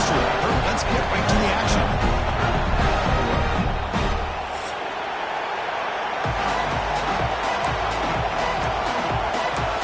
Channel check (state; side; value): identical; both; correlation 1.00